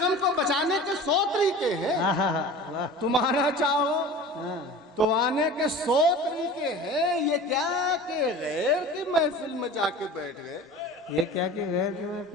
को बचाने के 100 तरीके हैं। वाह। तुम आना चाहो हाँ। तो आने के 100 तरीके हैं। ये क्या कि गैर की महफिल में जाके बैठ गए। ये क्या कि गैर की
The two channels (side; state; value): both; normal; correlation 0.37